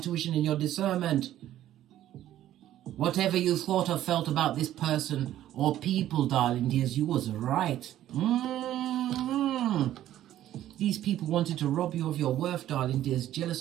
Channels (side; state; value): left; quieter; 12.7 dB